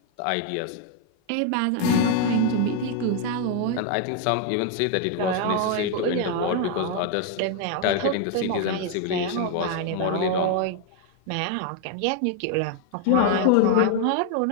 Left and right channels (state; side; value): different; both; correlation 0.00